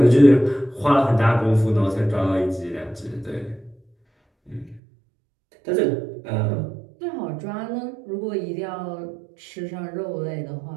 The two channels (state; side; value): drops out; left; at 4.8 s